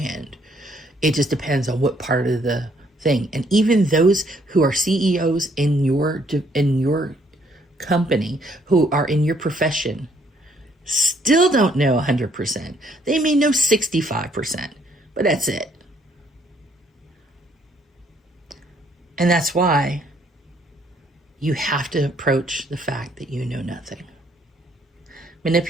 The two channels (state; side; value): normal; both; correlation 0.66